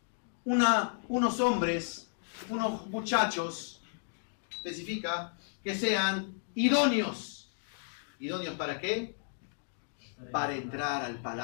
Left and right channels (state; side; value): silent; right; digital silence